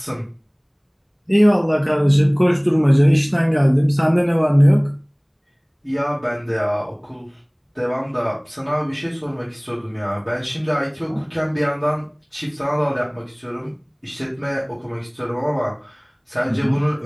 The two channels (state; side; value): identical; both; correlation 1.00